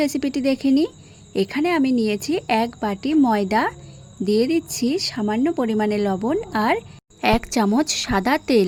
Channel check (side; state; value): both; identical; correlation 1.00